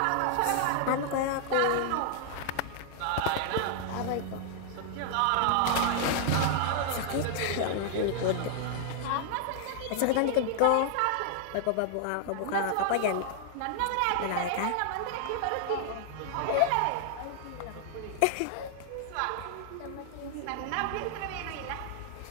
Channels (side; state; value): both; different; correlation -0.01